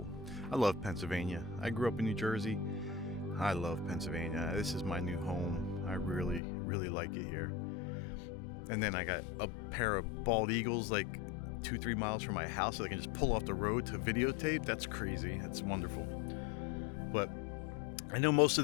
I love Pennsylvania. I grew up in New Jersey. I love Pennsylvania. This is my new home. I really, really like it here. And then I got a pair of bald eagles like 2-3 miles from my house, so I can just pull off the road to videotape. That's crazy. That's wonderful. But I know most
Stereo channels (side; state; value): right; drops out; at 6.4 s